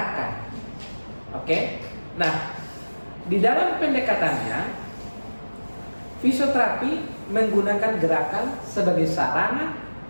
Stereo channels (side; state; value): both; inverted; correlation -1.00